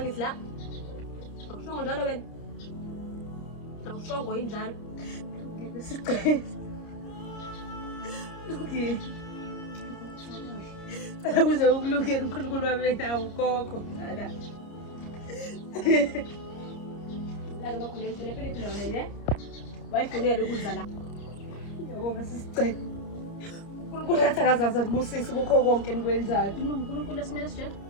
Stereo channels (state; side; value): late; right; 29 ms